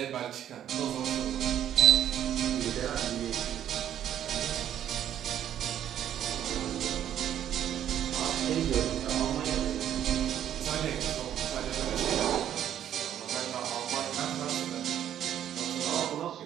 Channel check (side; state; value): left; quieter; 10.6 dB